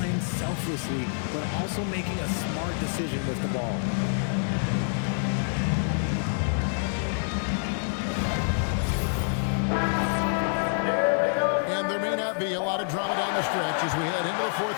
selflessly, but also making a smart decision with the ball. And there may not be a lot of drama down the stretch as we head into the fourth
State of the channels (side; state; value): right; silent; digital silence